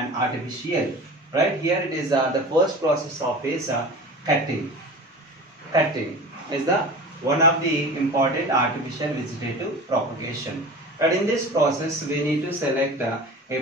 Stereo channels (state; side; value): normal; both; correlation 0.35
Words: artificial. Right here it is the first process of is cutting. Cutting is the one of the important artificial vegetative propagation. But in this process, we need to select a